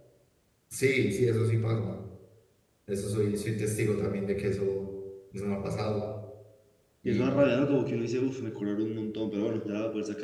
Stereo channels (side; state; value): both; identical; correlation 1.00